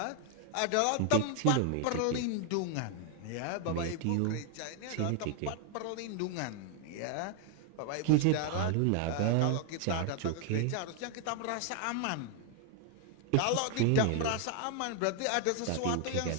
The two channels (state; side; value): different; both; correlation 0.00